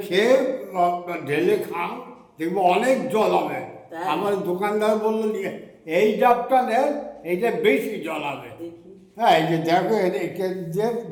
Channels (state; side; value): identical; both; correlation 1.00